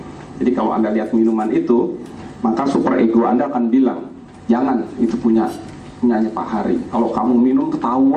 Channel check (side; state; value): both; identical; correlation 1.00